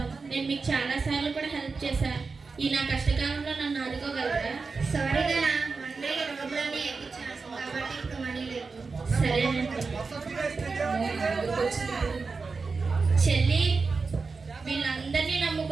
నేను మీకు చాలాసార్లు కూడా హెల్ప్ చేశాను. ఈ నా కష్టకాలంలో నన్ను ఆదుకోగలరా? సారీ దానా, మొన్నే రోడ్లన్నీ ఎక్కించాను కాబట్టి ఇప్పుడు మనీ లేదు. సరేనండి. చెల్లి, వీళ్ళందరినీ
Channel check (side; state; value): left; quieter; 4.5 dB